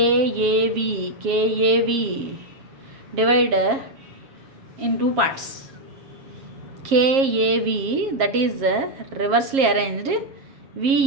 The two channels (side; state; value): left; late; 7.4 ms